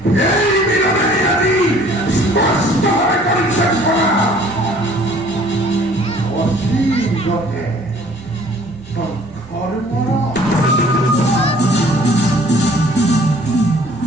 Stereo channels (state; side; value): normal; both; correlation 0.54